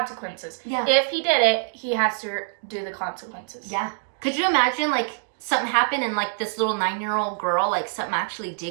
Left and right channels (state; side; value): silent; left; digital silence